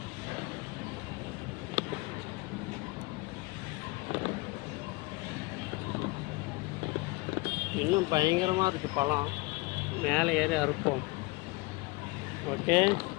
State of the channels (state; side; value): quieter; right; 24.2 dB